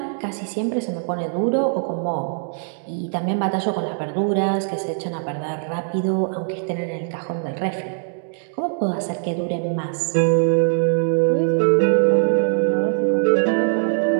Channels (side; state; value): left; silent; digital silence